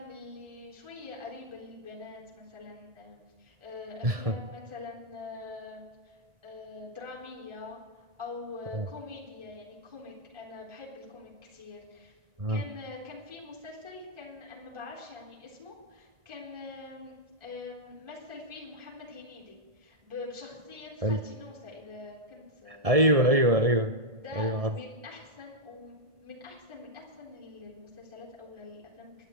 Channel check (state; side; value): late; left; 1.7 ms